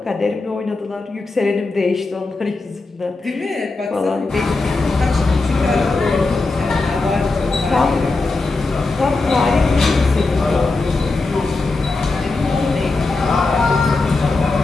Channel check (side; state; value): right; quieter; 3.5 dB